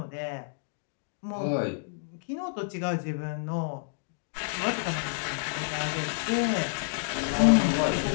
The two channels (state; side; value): silent; right; digital silence